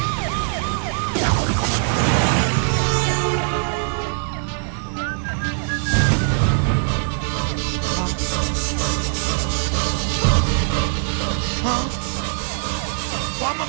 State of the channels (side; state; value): left; silent; 57 dB below the other